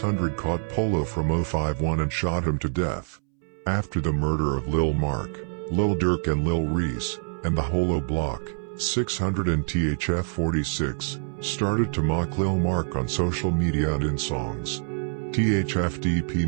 caught Polo from 051 and shot him to death. After the murder of Lil Marc, Lil Durk and Lil Reese, and the Holo Block, 600 and THF 46, started to mock Lil Marc on social media and in songs. THFDP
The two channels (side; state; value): left; silent; 61 dB below the other